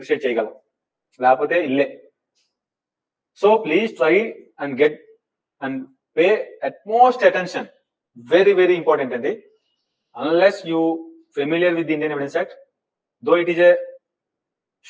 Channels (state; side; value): identical; both; correlation 1.00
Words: చేయగలవు, లేకపోతే ఇల్లే. So please try and get and pay utmost attention. Very, very important, and unless you familiar with the Indian Evidence Act, though it is a